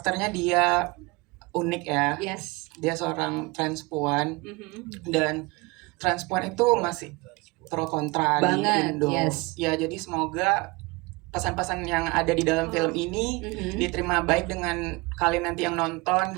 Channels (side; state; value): left; quieter; 25.1 dB